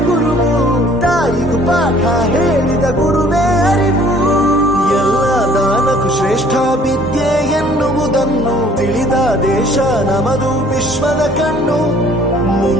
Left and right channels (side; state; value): both; normal; correlation 0.56